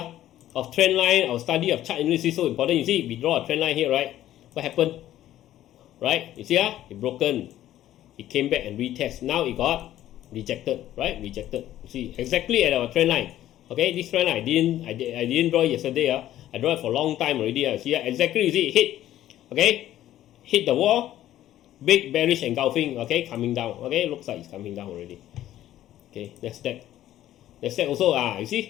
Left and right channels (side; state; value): right; quieter; 13.1 dB